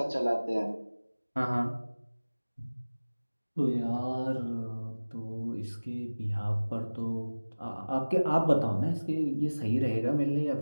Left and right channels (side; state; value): both; inverted; correlation -1.00